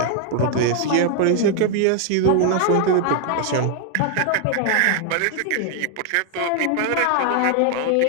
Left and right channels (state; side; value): different; both; correlation 0.00